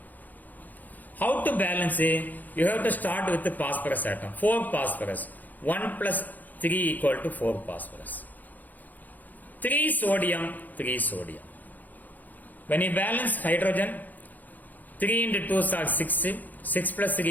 How to balance it? You have to start with the phosphorus atom. 4 phosphorus. 1 plus 3 equal to 4 phosphorus. 3 sodium, 3 sodium. When you balance hydrogen, 3 into 2 are 6. 6 plus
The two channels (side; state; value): right; late; 0.083 ms